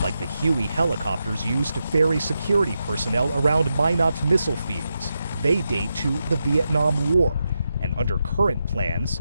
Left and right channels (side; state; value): both; inverted; correlation -0.87